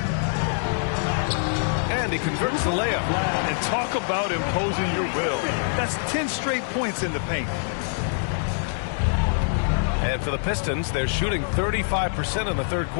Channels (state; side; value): silent; right; 62 dB below the other